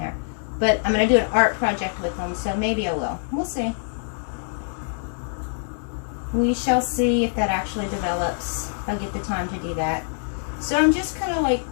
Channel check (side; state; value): right; silent; digital silence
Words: But I'm going to do an art project with them, so maybe I will. We'll see. We shall see if that actually develops. If I get the time to do that. So I'm just kind of like